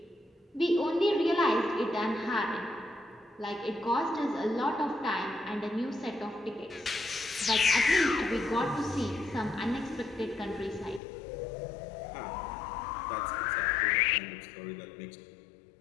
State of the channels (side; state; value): right; drops out; at 11.0 s